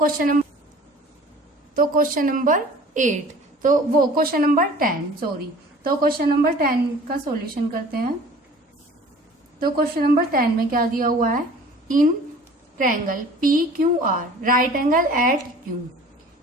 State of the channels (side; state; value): both; normal; correlation 0.47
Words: क्वेश्चन नंबर 8, तो वो क्वेश्चन नंबर 10 सॉरी। तो क्वेश्चन नंबर 10 का सॉल्यूशन करते हैं। तो क्वेश्चन नंबर 10 में क्या दिया हुआ है, in triangle PQR right angle at Q,